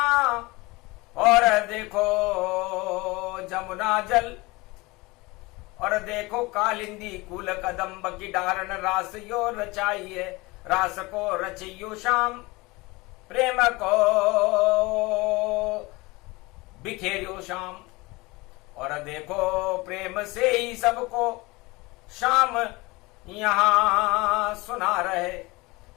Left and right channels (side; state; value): right; quieter; 23.3 dB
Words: और देखो जमुना जल, और देखो कालिंदी कुल कदम्ब की डारण रास यो रचाई है। रास को रचियो श्याम, प्रेम को बिखेरियो श्याम। और देखो प्रेम से ही सबको श्याम यहां सुना रहे।